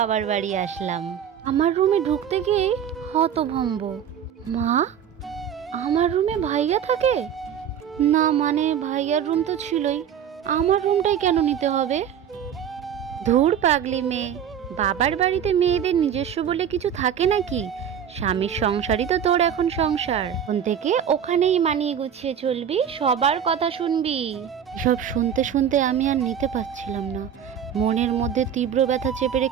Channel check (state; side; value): quieter; left; 8.7 dB